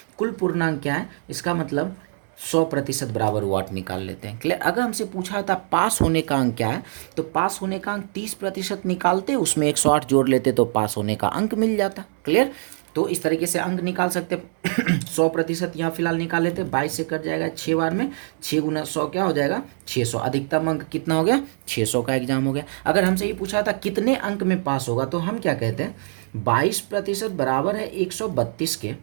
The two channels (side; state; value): left; silent; digital silence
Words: कुल पूर्णांक क्या है, इसका मतलब 100% बराबर वाट निकाल लेते हैं। क्लियर। अगर हमसे पूछा था पास होने का अंक क्या है, तो पास होने का अंक 30% निकालते, उसमें 108 जोड़ लेते तो पास होने का अंक मिल जाता। क्लियर। तो इस तरीके से अंक निकाल सकते। 100% यहाँ फिलहाल निकाल लेते, 22 से कट जाएगा 6 बार में, 6 गुना 100 क्या हो जाएगा 600। अधिकतम अंक कितना हो गया, 600 का एग्जाम हो गया। अगर हमसे ये पूछा था कितने अंक में पास होगा, तो हम क्या कहते हैं, 22% बराबर है 132 के।